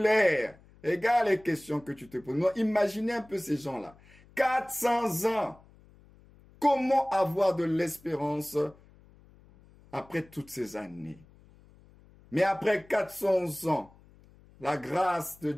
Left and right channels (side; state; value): left; noise; hum, 26 dB below the sound